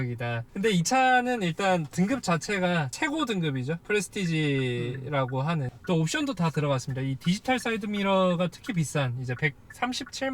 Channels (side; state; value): both; identical; correlation 1.00